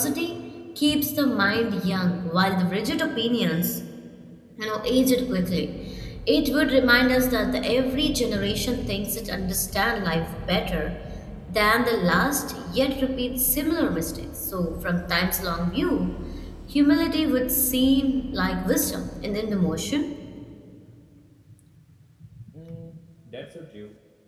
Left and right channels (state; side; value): identical; both; correlation 1.00